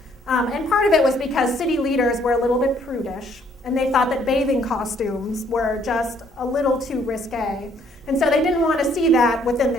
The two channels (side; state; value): both; normal; correlation 0.65